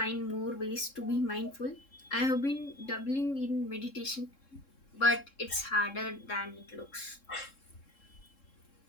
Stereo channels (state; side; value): late; right; 3.7 ms